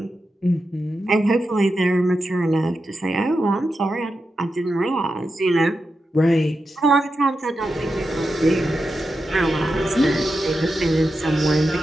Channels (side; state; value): both; normal; correlation 0.89